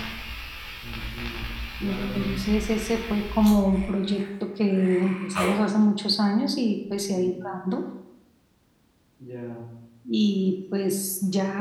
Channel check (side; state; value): both; identical; correlation 1.00